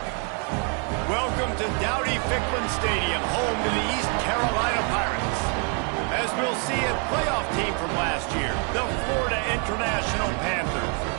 Welcome to Dowdy-Ficklin Stadium, home to the East Carolina Pirates. As we'll see, a playoff team from last year, the Florida International Panthers,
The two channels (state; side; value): quieter; left; 38.3 dB